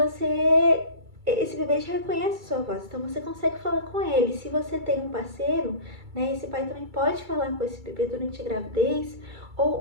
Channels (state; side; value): late; left; 2.3 ms